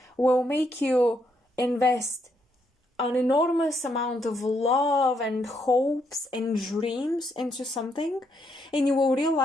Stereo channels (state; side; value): normal; both; correlation 0.76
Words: will make you invest an enormous amount of love and hopes and dreams into something, and you will